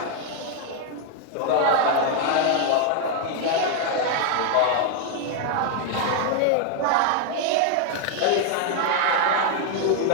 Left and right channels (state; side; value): different; both; correlation 0.00